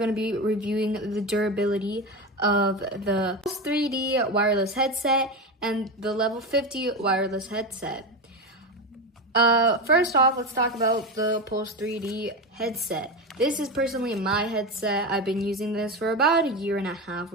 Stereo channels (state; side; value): normal; both; correlation 0.18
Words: to be reviewing the durability of the Pulse 3D wireless headset and the Level 50 wireless headset. First off, let's talk about the Pulse 3D headset. This is personally my headset. I've been using this for about a year and a half